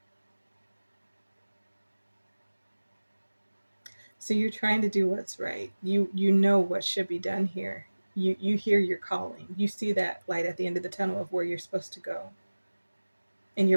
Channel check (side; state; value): both; inverted; correlation -1.00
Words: so you're trying to do what's right. You know what should be done here. You hear your calling. You see that light at the end of the tunnel of where you're supposed to go. And